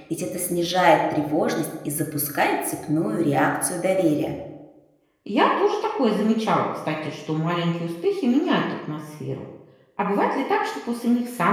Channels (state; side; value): identical; both; correlation 1.00